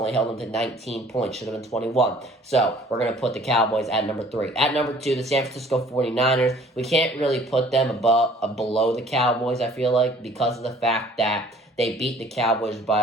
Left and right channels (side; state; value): both; normal; correlation 0.54